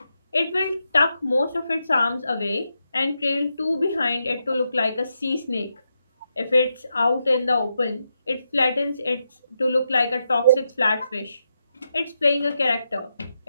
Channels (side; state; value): both; inverted; correlation -0.84